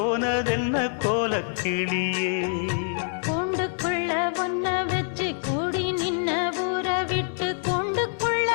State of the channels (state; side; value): silent; right; digital silence